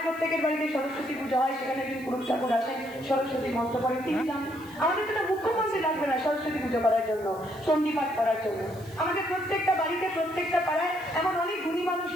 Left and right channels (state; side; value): noise; right; hiss, 23 dB below the sound